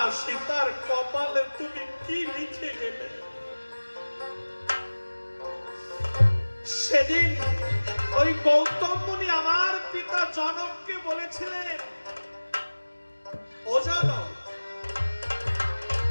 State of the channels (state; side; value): inverted; both; correlation -1.00